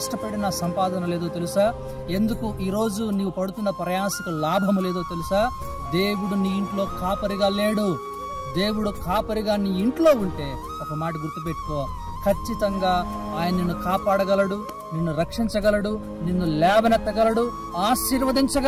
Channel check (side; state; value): both; identical; correlation 1.00